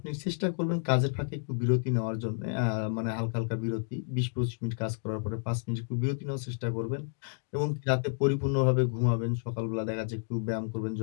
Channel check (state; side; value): silent; right; digital silence